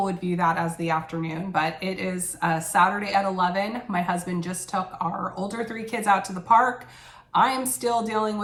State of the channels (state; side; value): identical; both; correlation 1.00